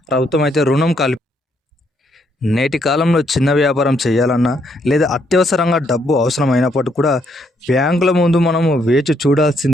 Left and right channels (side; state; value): both; normal; correlation 0.73